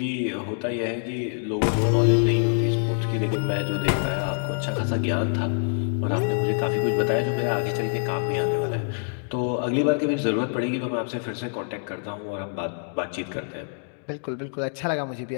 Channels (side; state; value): right; silent; digital silence